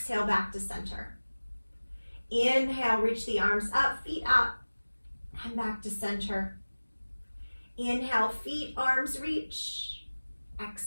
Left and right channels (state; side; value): inverted; both; correlation -1.00